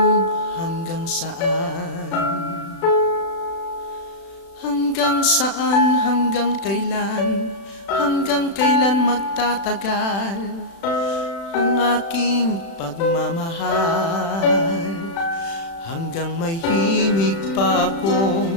hanggang saan. Hanggang saan, hanggang kailan magtatagal ang aking pagmamahal. Hanggang may himig pa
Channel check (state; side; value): late; right; 36 ms